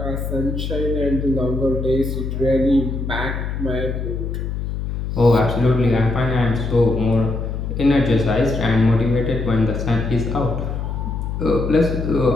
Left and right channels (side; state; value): left; noise; hum, 4 dB below the sound